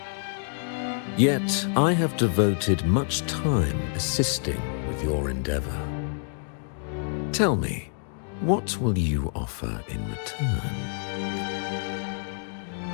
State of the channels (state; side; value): silent; right; digital silence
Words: Yet, I have devoted much time assisting with your endeavor. Tell me, what will you offer in return?